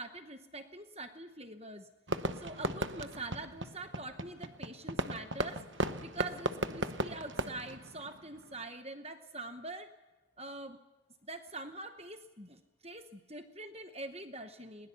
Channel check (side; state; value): both; normal; correlation -0.07